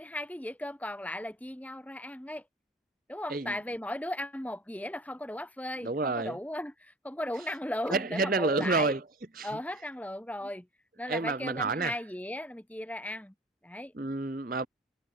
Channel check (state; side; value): normal; both; correlation 0.44